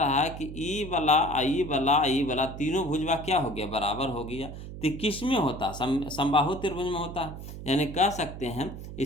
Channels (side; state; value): right; noise; hum, 10 dB below the sound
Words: है कि E वाला तीनों भुजवा क्या हो गया, बराबर हो गया। तो किस में होता, समबाहु त्रिभुज में होता है, यानी कह सकते हैं